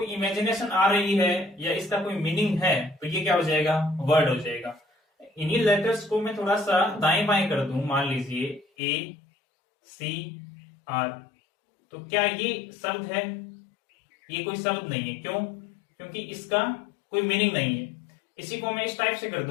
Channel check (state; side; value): drops out; right; at 8.7 s